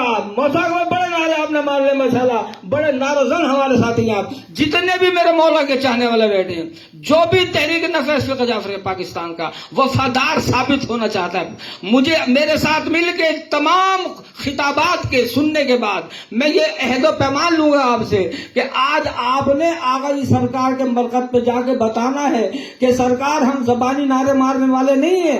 موسیقی میں بڑے نعرے آپ نے مار لے ماشاءاللہ، بڑے نعرہ زن ہمارے ساتھی ہیں آپ، جتنے بھی میرے مولا کے چاہنے والے بیٹھے ہیں، جو بھی تحریک نفاذ فقہ جعفری پاکستان کا وفادار ثابت ہونا چاہتا ہے، مجھے میرے ساتھ مل کے تمام خطابات کے سننے کے بعد میں یہ عہد و پیمان لوں گا آپ سے کہ آج آپ نے آغا جی سرکار کے مرکز پہ جا کے بتانا ہے کہ سرکار ہم زبانی نعرے مارنے والے نہیں ہیں،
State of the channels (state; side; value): identical; both; correlation 1.00